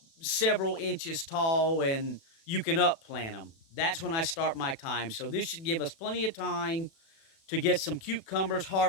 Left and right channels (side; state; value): right; late; 36 ms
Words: several inches tall and you can upplant them. That's when I start my time. So this should give us plenty of time to get some cucumbers